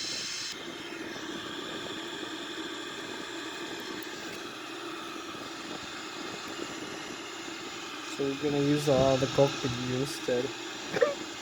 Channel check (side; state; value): both; identical; correlation 1.00